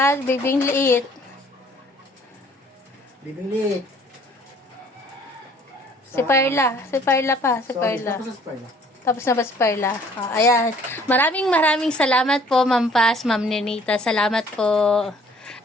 bibing liit. Bibing liit. Si Perla pa, si Sorry. Perla. Tapos sa Perla. Tapos na ba si Perla? Ayan. Maraming salamat po, Ma'am Paz, Ma'am Nenita. Salamat po.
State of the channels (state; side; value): normal; both; correlation 0.57